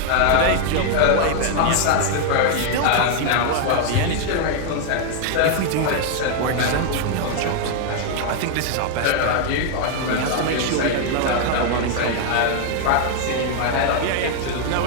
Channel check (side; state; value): both; different; correlation 0.00